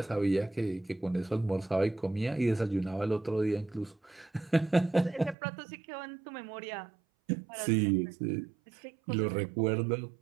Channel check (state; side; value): drops out; left; at 5.4 s